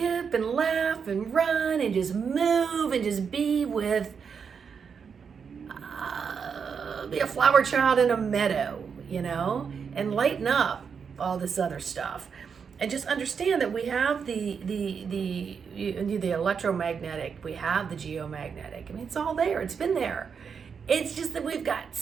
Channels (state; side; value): quieter; left; 6.3 dB